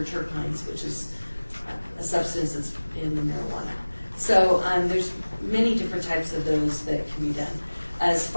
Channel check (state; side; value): inverted; both; correlation -1.00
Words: terpenes, which is a substance that's in the marijuana. So there's many different types of those that can be done. As